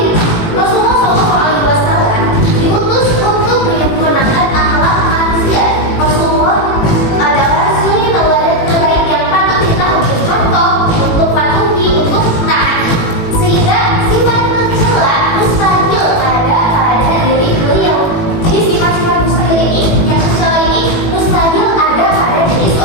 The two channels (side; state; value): right; late; 18 ms